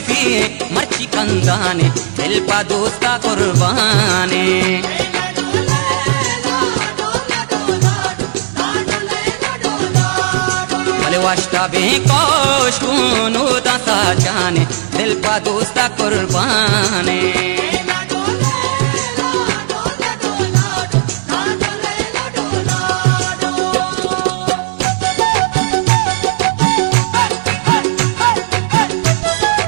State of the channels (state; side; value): silent; left; digital silence